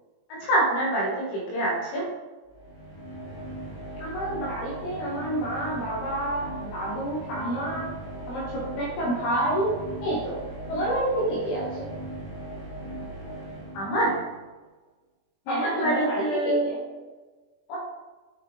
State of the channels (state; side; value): late; right; 20 ms